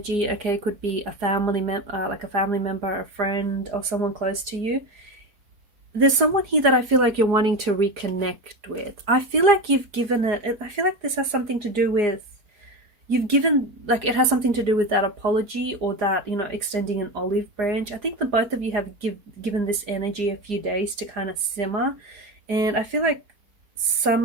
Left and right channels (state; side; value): late; left; 4.8 ms